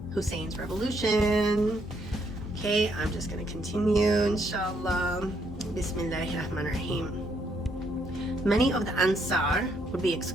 Hussein's revolution. Okay, I'm just going to continue, inshallah. Bismillahirrahmanirrahim. Many of the Ansar would be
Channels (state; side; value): normal; both; correlation 0.73